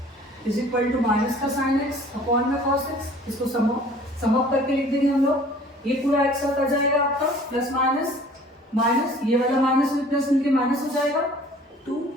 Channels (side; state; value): both; normal; correlation 0.50